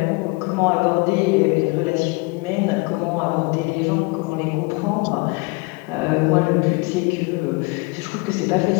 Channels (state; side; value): quieter; right; 27.8 dB